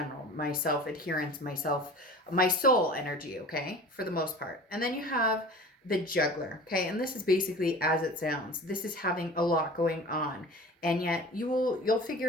my self-adherence, my soul energy, okay, for the most part. And then you have the Juggler, okay, and this is basically as it sounds. This is having a lot going on, and yet you'll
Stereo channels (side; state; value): both; normal; correlation 0.40